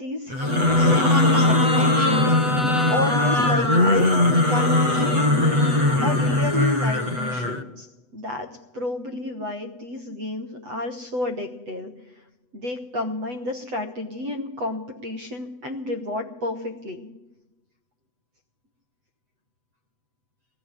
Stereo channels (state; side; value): late; left; 8.1 ms